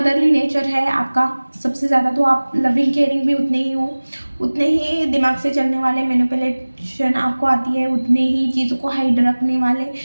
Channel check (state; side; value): inverted; both; correlation -1.00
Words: नेचर है आपका सबसे ज़्यादा। तो आप लविंग केयरिंग भी उतने ही हो, उतने ही दिमाग से चलने वाले, मैनिपुलेशन आपको आती है, उतने ही चीज़ों को हाइड रखने वाले,